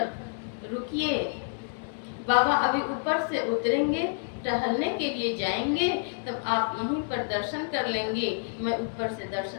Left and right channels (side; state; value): right; silent; digital silence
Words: रुकिए, बाबा अभी ऊपर से उतरेंगे, टहलने के लिए जाएंगे, तब आप यहीं पर दर्शन कर लेंगे, मैं ऊपर से